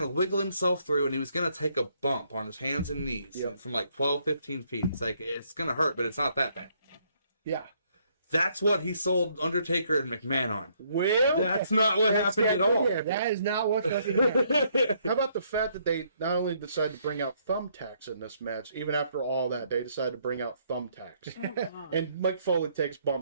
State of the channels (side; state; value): both; inverted; correlation -0.69